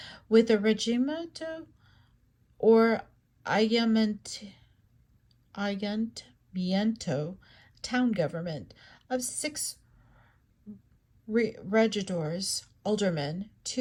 with a regimiento or ayuntamiento, town government, of 6 regidors, aldermen,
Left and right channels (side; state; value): both; identical; correlation 1.00